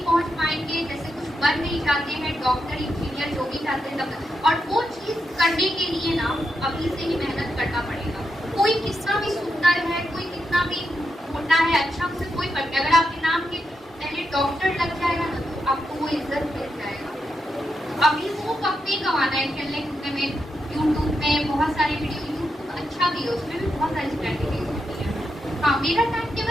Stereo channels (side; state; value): both; normal; correlation 0.85